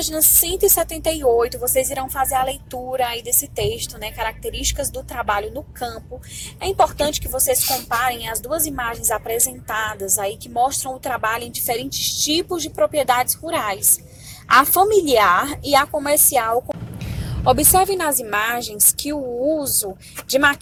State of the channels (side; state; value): both; identical; correlation 1.00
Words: 178, vocês irão fazer a leitura aí desse texto, né? Características do trabalho no campo. É importante que vocês comparem as duas imagens apresentadas aí que mostram o trabalho em diferentes tipos de propriedades rurais, a familiar e a comercial. Observe nas imagens que o uso de